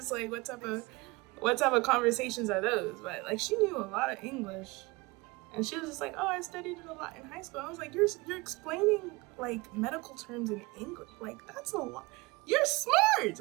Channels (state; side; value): quieter; left; 24.3 dB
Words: like, what type of conversations are those? But like, she knew a lot of English. And she was just like, oh, I studied it a lot in high school. I was like, you're explaining like medical terms in English. Like, that's a lot. You're smart.